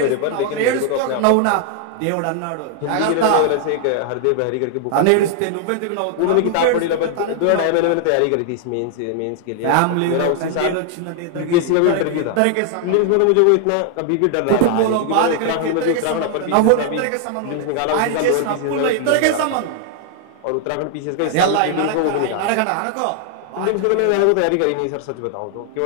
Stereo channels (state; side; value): different; both; correlation 0.00